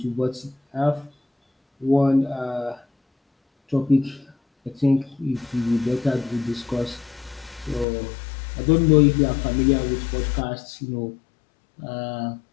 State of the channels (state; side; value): drops out; right; at 7.9 s